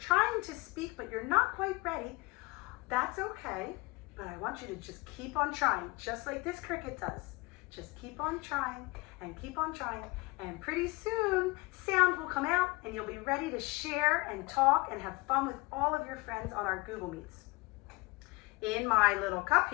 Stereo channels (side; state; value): right; quieter; 24.3 dB